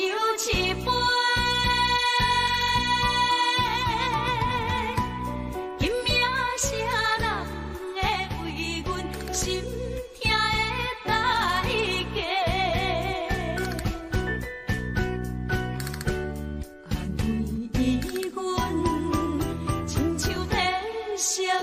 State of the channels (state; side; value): identical; both; correlation 1.00